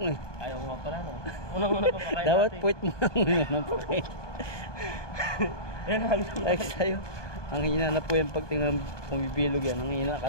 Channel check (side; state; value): right; late; 1.2 ms